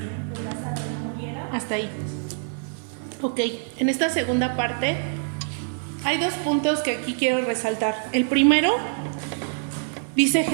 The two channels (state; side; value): silent; left; 62 dB below the other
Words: que Lázaro no muriera? Hasta ahí. Ok, en esta segunda parte hay dos puntos que aquí quiero resaltar. El primero, dice